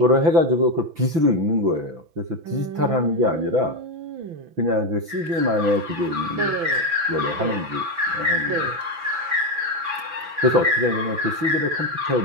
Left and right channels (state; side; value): late; left; 6.0 ms